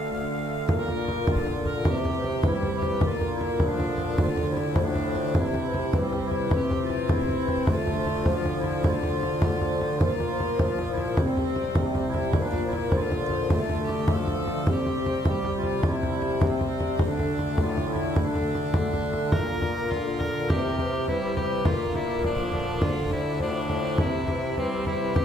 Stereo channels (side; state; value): both; normal; correlation 0.74